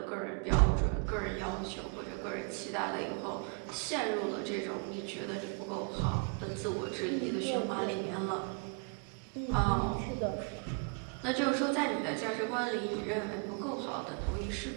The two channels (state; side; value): quieter; left; 36.9 dB